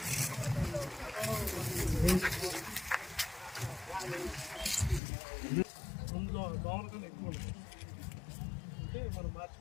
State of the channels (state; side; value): drops out; right; at 5.0 s